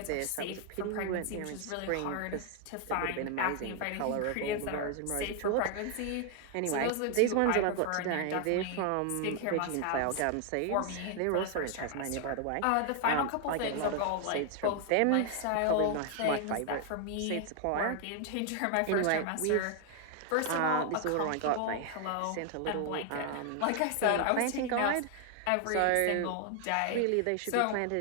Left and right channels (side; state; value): both; different; correlation 0.00